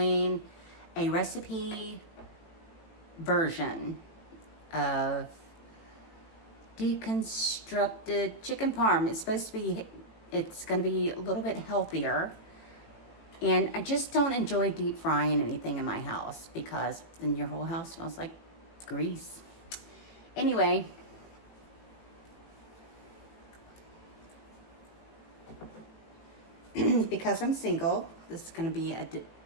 a recipe version of Deconstructed Chicken Parm. It's going to be a little bit healthier, and I just don't enjoy deep frying anything in my house because then your whole house smells like grease. Anyway, because I'm single, this is going to be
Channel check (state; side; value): late; right; 18 ms